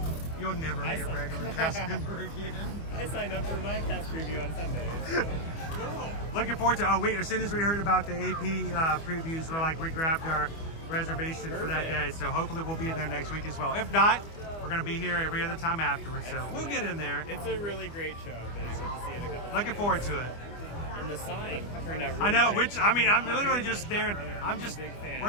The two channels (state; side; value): late; right; 25 ms